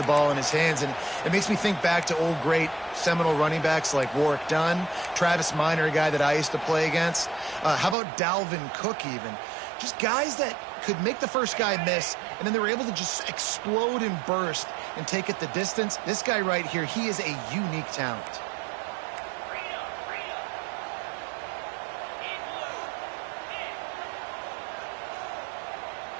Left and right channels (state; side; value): drops out; left; at 8.0 s